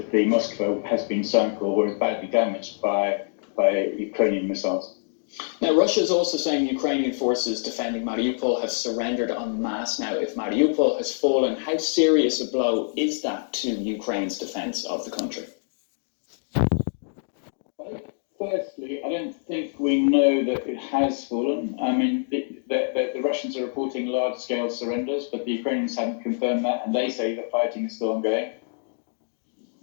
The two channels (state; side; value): silent; right; digital silence